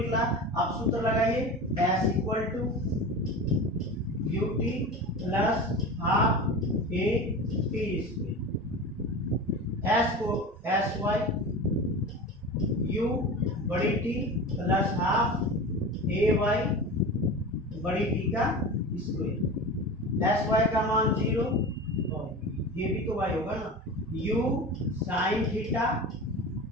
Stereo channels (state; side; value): normal; both; correlation 0.30